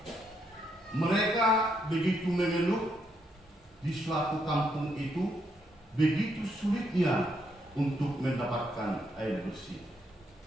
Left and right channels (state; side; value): normal; both; correlation 0.77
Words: Mereka begitu mengeluh di suatu kampung itu begitu sulitnya untuk mendapatkan air bersih.